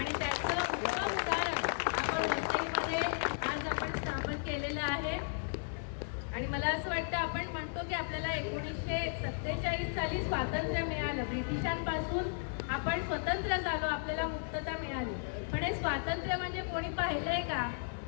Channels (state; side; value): silent; right; digital silence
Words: त्याचं उत्तम उदाहरण आपण वसईमध्ये आज आपण स्थापन केलेलं आहे. आणि मला असं वाटतं, आपण म्हणतो की आपल्याला 1947 साली स्वातंत्र्य मिळालं, ब्रिटिशांपासून आपण स्वतंत्र झालो, आपल्याला मुक्तता मिळाली. पण हे स्वातंत्र्य म्हणजे कोणी पाहिलंय का?